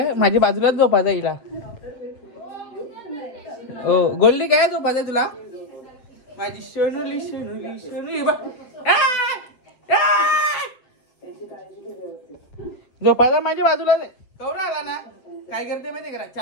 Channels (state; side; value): late; right; 8.0 ms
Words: माझ्या बाजूलाच झोपायचा हिला. ओ गोल्डी काय झोपायचा तुला? माझी शनुली शनुली शनुली झोपायचा माझ्या बाजूला नाही. कवरा आला ना, काय करते माहितीये का,